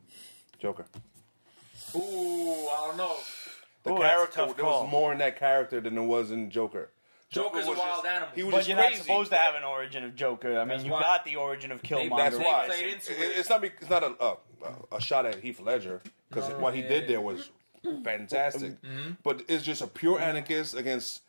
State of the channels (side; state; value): both; inverted; correlation -1.00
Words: Joker. Ooh, I don't know. The Ooh, that's a character, tough there call. was more in that character than there was in Joker. Joker's was a wild just- animal. He was But just you're crazy. not supposed to have an origin of Joker. I mean, That's you why. got the origin of Killmonger. That's They why. played into it. It's not a shot at Heath Ledger because what he did there was fantastic. But it's just a pure anarchist against